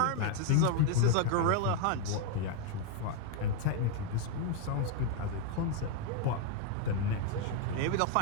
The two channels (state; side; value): different; both; correlation 0.00